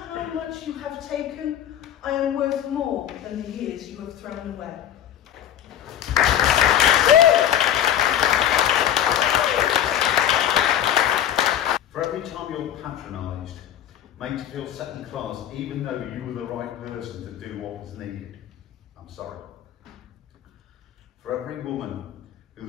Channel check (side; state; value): right; quieter; 10.6 dB